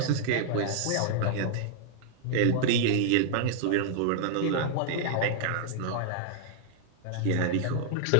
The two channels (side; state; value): both; different; correlation -0.01